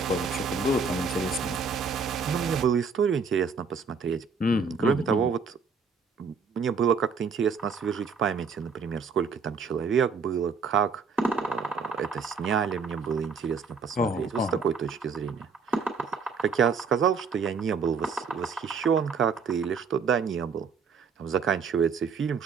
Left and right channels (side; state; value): left; quieter; 5.2 dB